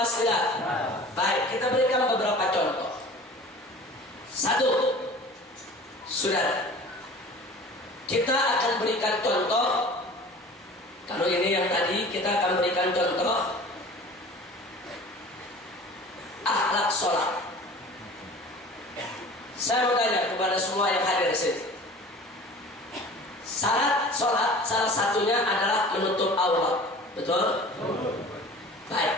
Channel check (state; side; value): normal; both; correlation 0.42